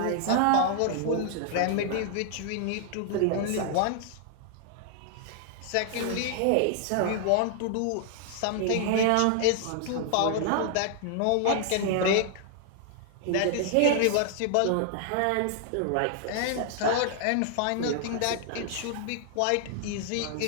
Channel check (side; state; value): both; different; correlation 0.00